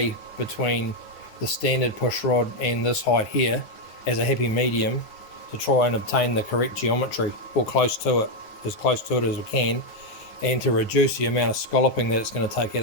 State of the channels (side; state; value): right; late; 9.7 ms